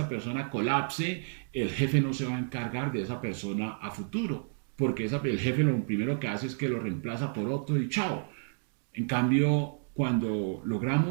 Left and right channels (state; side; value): silent; left; digital silence